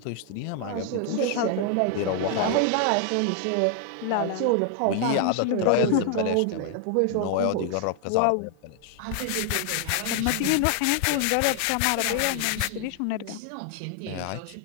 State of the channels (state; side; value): different; both; correlation 0.00